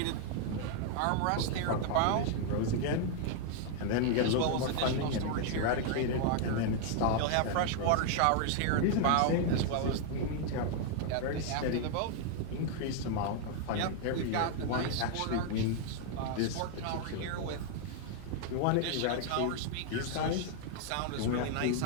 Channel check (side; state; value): both; different; correlation 0.00